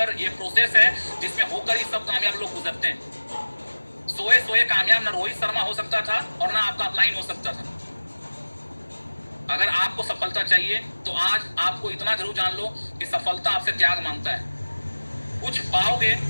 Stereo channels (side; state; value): both; inverted; correlation -1.00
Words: ये प्रोसेस है जिसमें होकर ही सब कामयाब लोग गुजरते हैं। सोए कामयाब ना रोहित शर्मा हो सकता था और ना आपका अपलाइन हो सकता था। अगर आपको सफलता चाहिए तो आज आपको इतना जरूर जान लो कि सफलता आपसे त्याग मांगता है। कुछ पाओगे